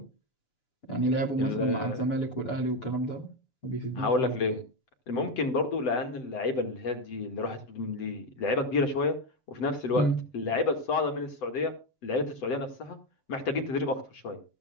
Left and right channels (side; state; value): right; late; 7.9 ms